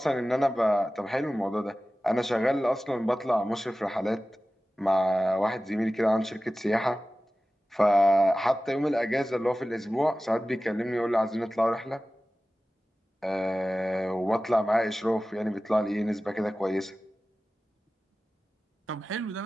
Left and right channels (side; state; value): both; normal; correlation 0.96